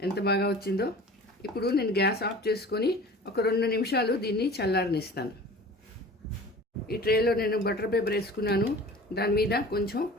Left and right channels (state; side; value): normal; both; correlation 0.42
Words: ఎంత బాగా వచ్చిందో. ఇప్పుడు నేను గ్యాస్ ఆఫ్ చేసుకొని ఒక 2 నిమిషాలు దీన్ని చల్లారనిస్తాను. ఈ ట్రేలో నేను బటర్ పేపర్ వేసుకున్నాను, దాని మీద కొంచెం